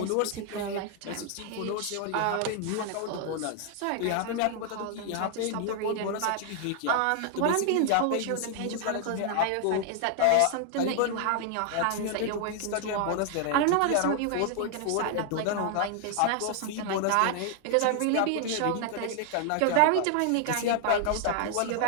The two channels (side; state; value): both; different; correlation 0.00